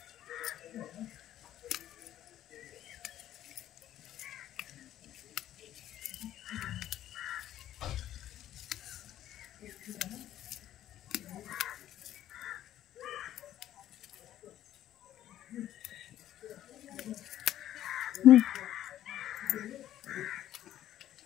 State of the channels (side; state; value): right; quieter; 12.3 dB